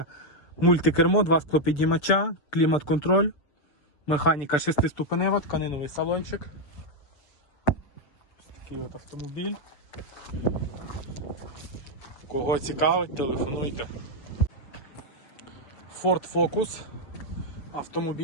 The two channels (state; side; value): late; right; 6.9 ms